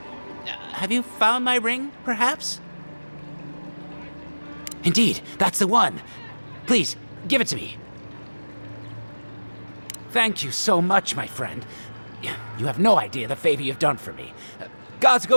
Have you found my ring, perhaps? Indeed, that's the one. Please, give it to me. Thank you so much, my friend. You have no idea the favor you've done for me. Gods go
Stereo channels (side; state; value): both; inverted; correlation -1.00